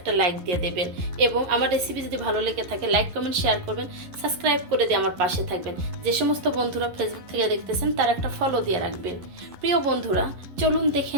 লাইক দিয়ে দেবেন এবং আমার রেসিপি যদি ভালো লেগে থাকে লাইক কমেন্ট শেয়ার করবেন, সাবস্ক্রাইব করে দিয়ে আমার পাশে থাকবেন। যে সমস্ত বন্ধুরা ফেসবুক থেকে দেখতেছেন তারা একটা ফলো দিয়ে রাখবেন। প্রিয় বন্ধুরা, চলুন দেখে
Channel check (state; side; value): late; left; 11 ms